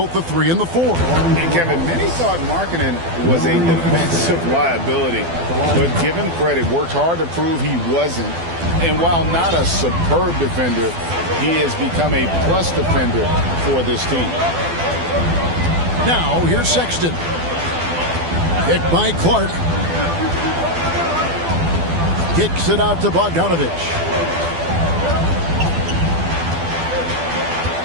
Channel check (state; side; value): late; left; 12 ms